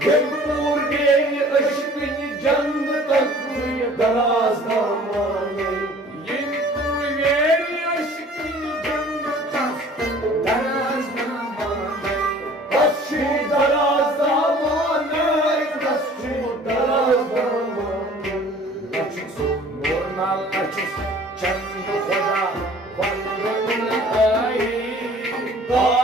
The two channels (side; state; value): both; normal; correlation 0.50